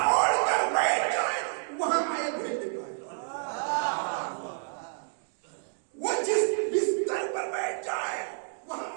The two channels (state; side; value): silent; left; digital silence